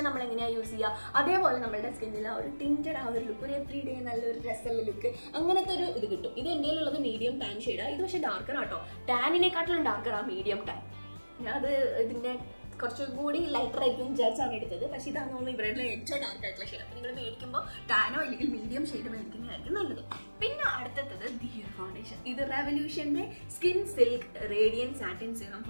നമ്മൾ എങ്ങനെയാണ് യൂസ് ചെയ്യുക അതേപോലെ നമ്മളുടെ സ്കിന്നിൽ ആ ഒരു ടിൻറ്റഡ് ആ ഒരു ലുക്ക്, ഒരു എവറി ഡേ നല്ലൊരു രസമുള്ള ലുക്ക്, അങ്ങനത്തെ ഒരു ഇത് കിട്ടും. ഇത് എൻ്റെ ഉള്ളത് മീഡിയം ടാൻ ഷെയ്ഡാണ്. ഇത് പക്ഷേ ഡാർക്കർ ആട്ടോ. ടാനിനെക്കാട്ടിലും ഡാർക്കറാണ് മീഡിയം ടാൻ. അത് ഇതിൻ്റെ കുറച്ചുകൂടി ലൈറ്റർ ആയിരിക്കും വിചാരിച്ചാണ് എടുത്തത്. പക്ഷേ ഇതാണ് തോന്നുന്നു ഇവരുടെ ഏറ്റവും ഡാർക്ക് ആയിട്ടുള്ള ഷെയ്ഡ്. അപ്പോൾ നിങ്ങൾ മേടിക്കുമ്പോൾ ടാനോ അല്ലെങ്കിൽ മീഡിയം ഷെയ്ഡ് മേടിക്കുന്നതായിരിക്കും നല്ലത്. പിന്നെ അടുത്തത് ദിയർ ഫൗണ്ടേഷൻ. ഇത് റെവല്യൂഷൻ്റെ skin silk radiant satin serum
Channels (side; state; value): both; inverted; correlation -1.00